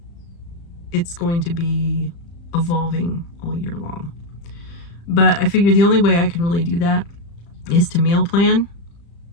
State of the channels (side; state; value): right; late; 35 ms